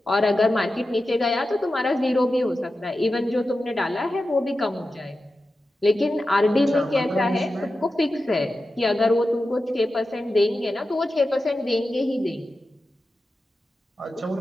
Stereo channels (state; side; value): normal; both; correlation 0.92